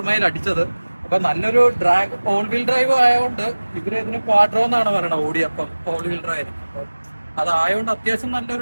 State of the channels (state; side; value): inverted; both; correlation -1.00